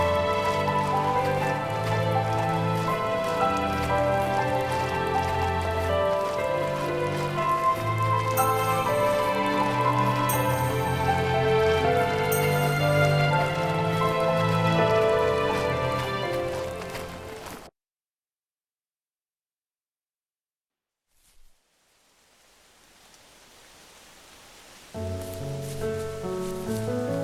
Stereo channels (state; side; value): identical; both; correlation 1.00